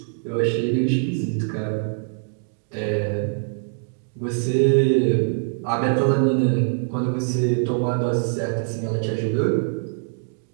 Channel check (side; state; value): left; silent; digital silence